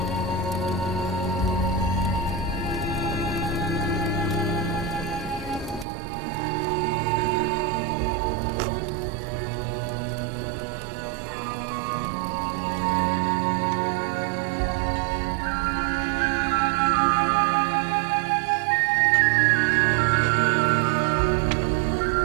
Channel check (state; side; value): drops out; left; at 5.9 s